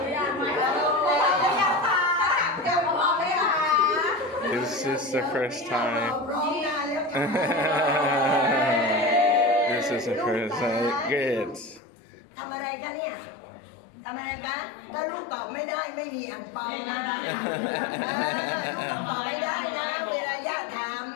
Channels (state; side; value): drops out; right; at 11.8 s